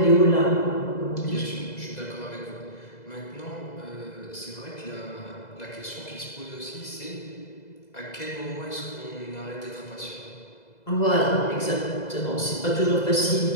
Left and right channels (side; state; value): right; late; 2.0 ms